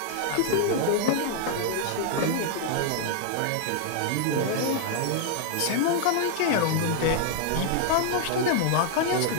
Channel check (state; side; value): different; both; correlation 0.00